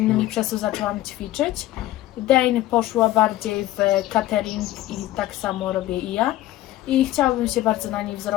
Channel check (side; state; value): right; quieter; 15.1 dB